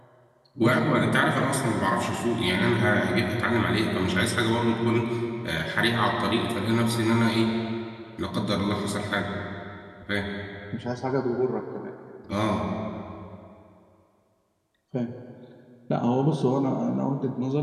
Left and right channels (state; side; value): identical; both; correlation 1.00